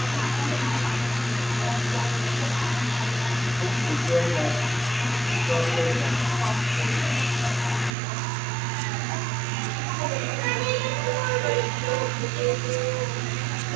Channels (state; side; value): drops out; left; at 7.9 s